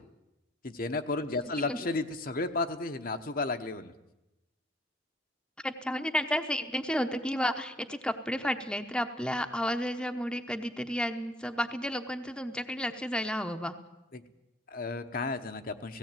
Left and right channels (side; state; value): both; normal; correlation 0.59